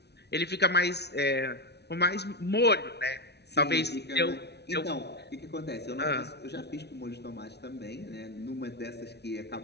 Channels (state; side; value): late; right; 0.49 ms